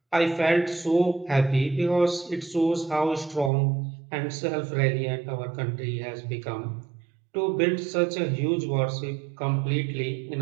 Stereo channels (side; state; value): left; drops out; at 3.5 s